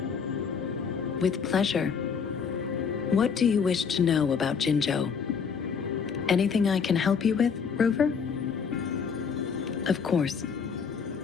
With pleasure. What do you wish to know about Jinzhou? Anything I can help you with, Rover? Of course.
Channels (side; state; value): right; quieter; 6.2 dB